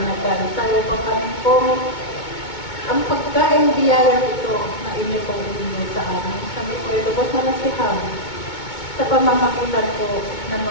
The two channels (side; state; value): right; late; 2.2 ms